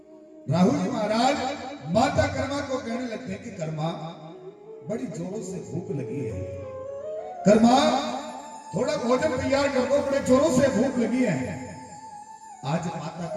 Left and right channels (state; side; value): identical; both; correlation 1.00